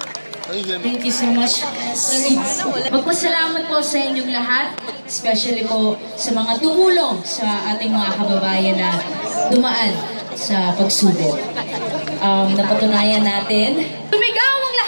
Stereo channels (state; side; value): inverted; both; correlation -1.00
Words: Thank you so much. Magpasalamat po sa inyong lahat, especially po sa mga tumulong sa ating mga kababayan na dumaan sa pagsubok. Napatunayan natin. Tumigaw ang